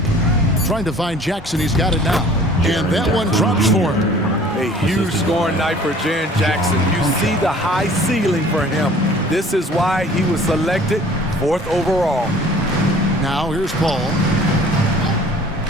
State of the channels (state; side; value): normal; both; correlation 0.50